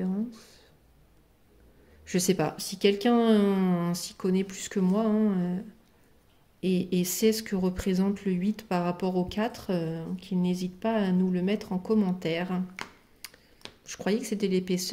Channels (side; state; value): both; identical; correlation 1.00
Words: Je sais pas. Si quelqu'un s'y connaît plus que moi, hein, et sait ce que représente le 8 par rapport au 4, qu'il n'hésite pas à nous le mettre en commentaire. Je croyais que c'était